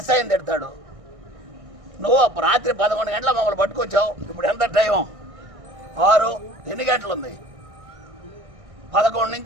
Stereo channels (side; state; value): left; late; 1.6 ms